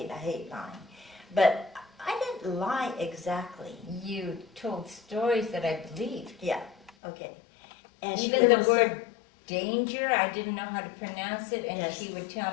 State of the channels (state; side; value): drops out; right; at 6.9 s